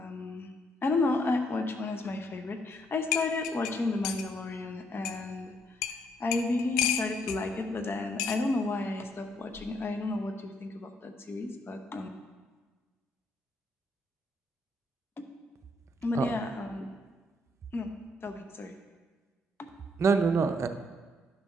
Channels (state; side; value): normal; both; correlation 0.71